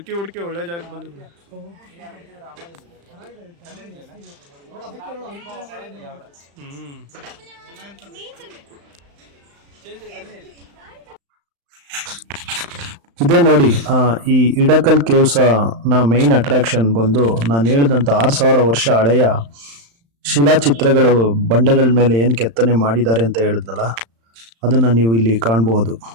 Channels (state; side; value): late; left; 35 ms